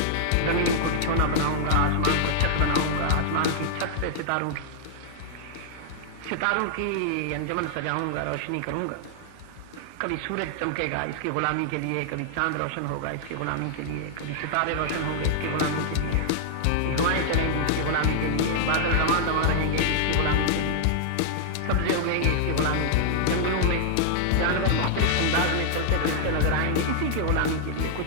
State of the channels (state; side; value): different; both; correlation -0.01